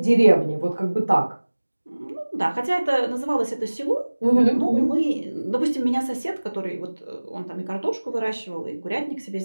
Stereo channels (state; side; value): inverted; both; correlation -1.00